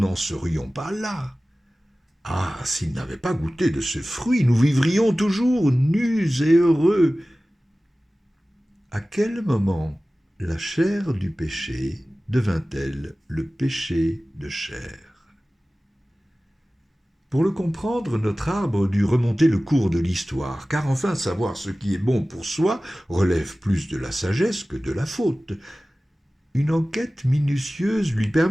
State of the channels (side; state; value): both; normal; correlation 0.97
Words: serions pas là. Ah, s'il n'avait pas goûté de ce fruit, nous vivrions toujours nus et heureux. À quel moment la chair du péché devint-elle le péché de chair ? Pour le comprendre, notre arbre dut remonter le cours de l'histoire, car enfin savoir ce qui est bon pour soi relève plus de la sagesse que de la faute. Une enquête minutieuse lui